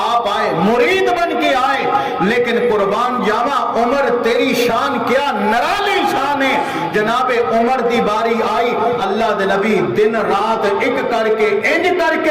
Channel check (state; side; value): identical; both; correlation 1.00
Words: آپ آئے، مرید بن کے آئے، لیکن قربان جاوا عمر تیری شان کیا نرالی شان ہے. جناب عمر دی باری آئی, اللہ دے نبی دن رات ایک کر کے انج کر